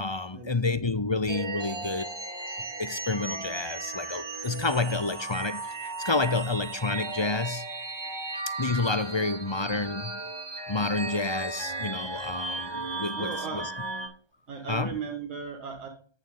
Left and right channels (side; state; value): right; late; 1.3 ms